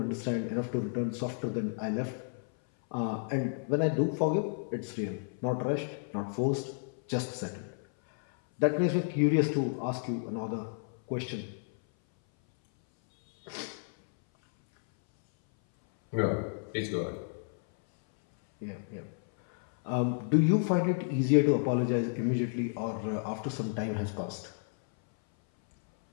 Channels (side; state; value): right; silent; 57 dB below the other